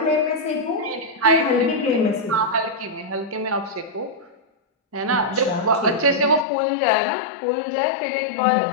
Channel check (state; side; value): drops out; right; at 6.5 s